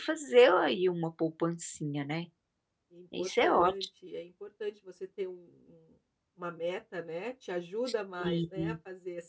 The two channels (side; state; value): both; identical; correlation 1.00